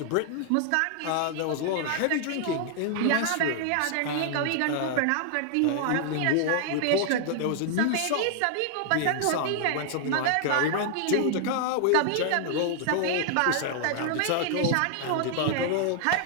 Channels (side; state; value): both; different; correlation 0.00